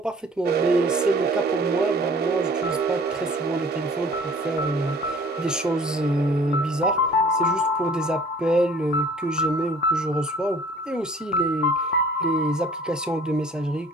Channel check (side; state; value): both; normal; correlation 0.51